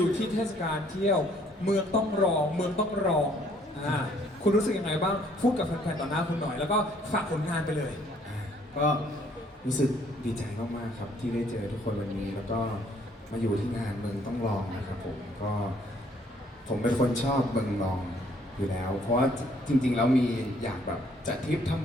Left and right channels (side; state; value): both; normal; correlation 0.63